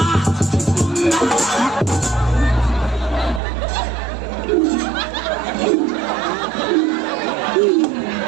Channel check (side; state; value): left; drops out; at 3.4 s